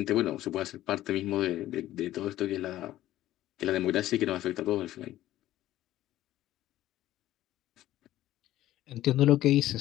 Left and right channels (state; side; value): quieter; right; 14.3 dB